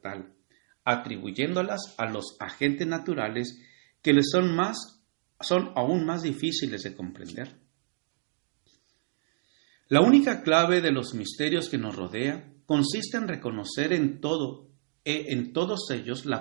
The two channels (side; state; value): left; silent; 59 dB below the other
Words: tal, atribuyéndolas a los agentes naturales que les son aún más difíciles de comprender. La única clave de los misterios que nos rodea consiste en reconocer en todos ellos